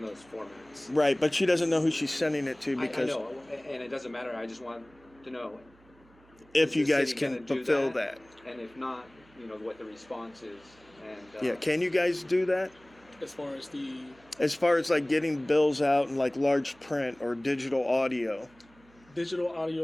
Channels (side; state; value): right; noise; hum, 29 dB below the sound